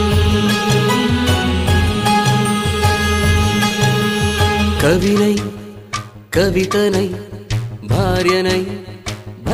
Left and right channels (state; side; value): identical; both; correlation 1.00